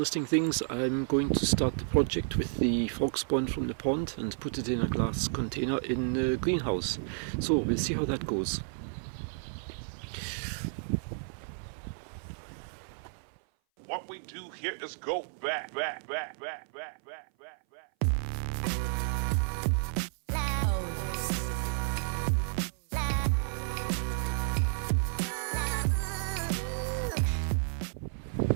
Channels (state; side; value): silent; left; 57 dB below the other